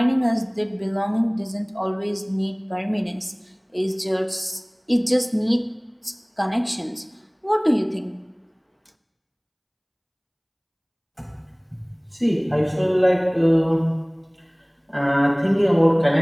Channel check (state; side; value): identical; both; correlation 1.00